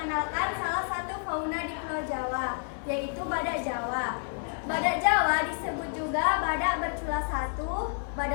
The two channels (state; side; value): silent; right; 57 dB below the other